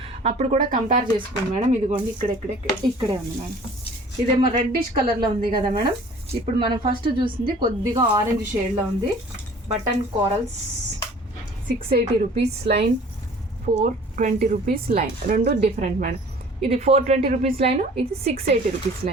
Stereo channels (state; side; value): normal; both; correlation 0.49